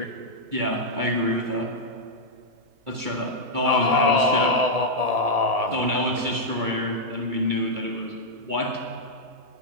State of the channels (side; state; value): left; late; 2.2 ms